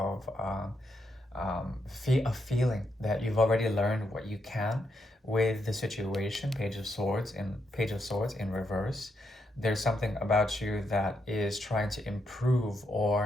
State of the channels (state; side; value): normal; both; correlation 0.80